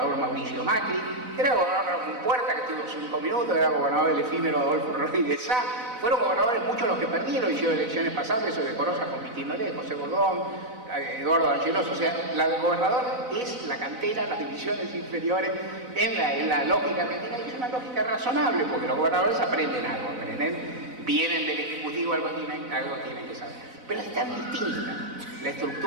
Mauricio Macri, era gobernador Ramón Puerta, que estuvo 5 minutos, era gobernador del efímero Adolfo Rodríguez Sá. Fueron gobernadores muchos los que perdieron, hicieron elecciones pasadas, eso de Corosa con Cristina Lé, José Bordón, Eduardo Angelos. O sea, la del gobernador es la cantera, las divisiones inferiores en la lógica argentina, y es una lógica razonable, porque los gobernadores aprenden algo, vienen del Ejecutivo, algo tienen que saber. Pero es tan distinta la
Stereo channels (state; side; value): late; left; 4.0 ms